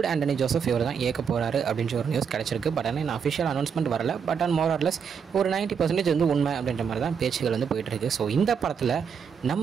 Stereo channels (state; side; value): quieter; left; 6.8 dB